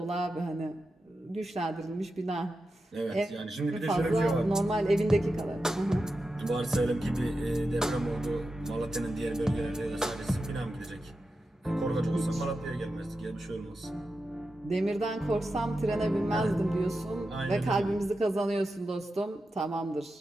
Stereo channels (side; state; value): both; normal; correlation 0.90